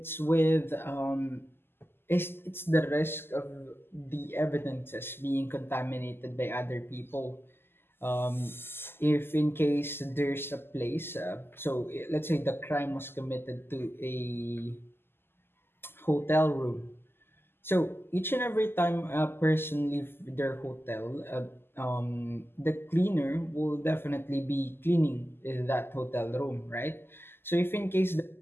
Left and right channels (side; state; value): right; late; 0.11 ms